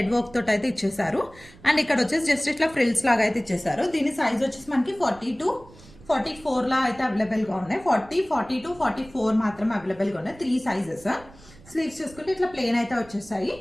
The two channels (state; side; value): noise; right; rumble, 22 dB below the sound